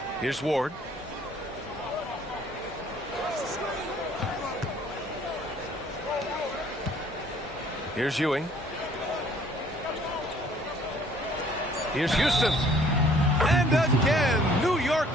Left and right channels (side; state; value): both; normal; correlation 0.58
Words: Here's Ward. Here's Ewing. Here's Houston. And again, New York